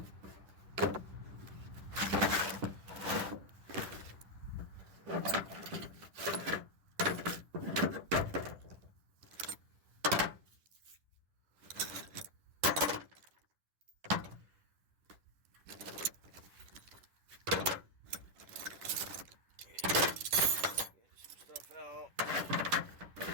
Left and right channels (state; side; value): late; left; 10 ms